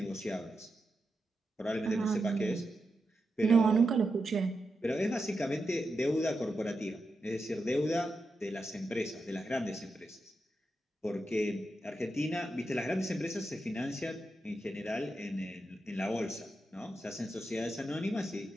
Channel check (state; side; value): normal; both; correlation 0.87